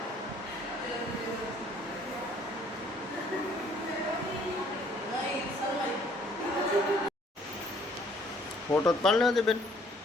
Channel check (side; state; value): both; normal; correlation 0.60